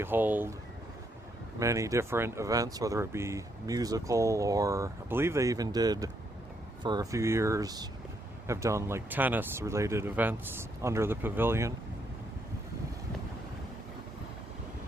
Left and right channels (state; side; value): normal; both; correlation 0.75